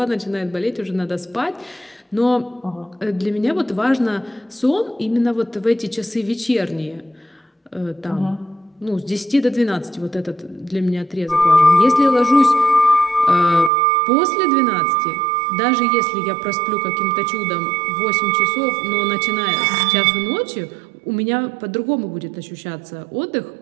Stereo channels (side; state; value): left; drops out; at 13.7 s